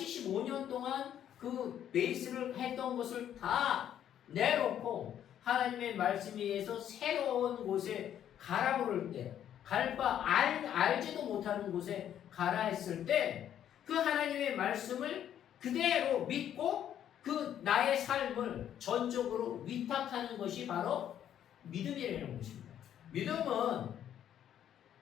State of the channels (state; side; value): quieter; right; 10.3 dB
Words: 동안 그 베이스를 했던 것을 다 내놓고 하나님의 말씀에 의해서 새로운 곳에 가라 그럴 때, 갈 바 알지도 못하는 곳에 가라 했을 때 그 하나님의 말씀을 그대로 믿고 그 나의 삶을 전적으로 위탁하는 것이 바로 믿음이라는 것입니다.